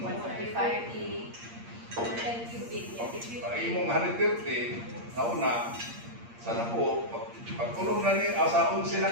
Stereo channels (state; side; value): late; left; 8.6 ms